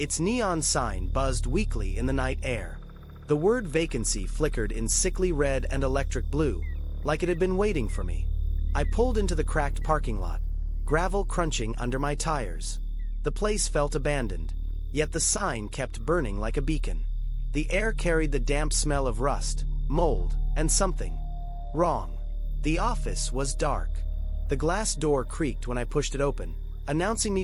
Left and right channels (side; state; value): both; identical; correlation 1.00